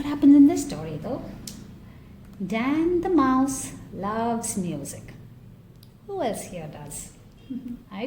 happens in this story though. Dan the mouse loves music. Who else here does? I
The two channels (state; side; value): identical; both; correlation 1.00